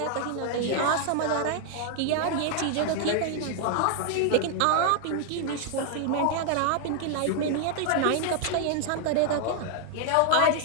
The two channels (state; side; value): different; both; correlation 0.00